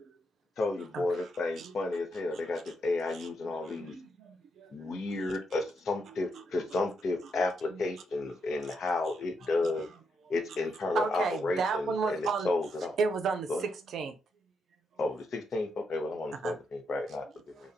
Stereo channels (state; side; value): normal; both; correlation 0.80